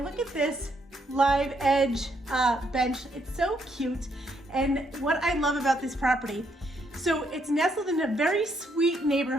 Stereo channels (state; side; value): normal; both; correlation 0.74